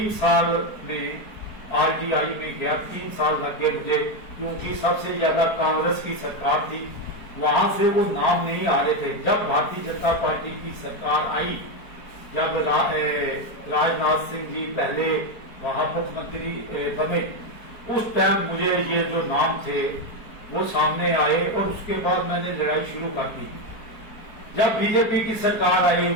साल में आरटीआई में गया, 3 साल लग गए मुझे, क्योंकि सबसे ज्यादा कांग्रेस की सरकार थी, वहां से वो नाम नहीं आ रहे थे। जब भारतीय जनता पार्टी की सरकार आई, जब राजनाथ सिंह जी पहले वहां मुख्यमंत्री बने, उस टाइम मुझे ये जो नाम थे वो सामने आए और उसके बाद मैंने लड़ाई शुरू कर दी। जब बीजेपी की सरकार आई,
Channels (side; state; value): right; late; 4.5 ms